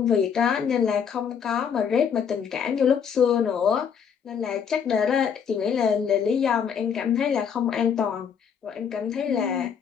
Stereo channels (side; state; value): right; quieter; 7.3 dB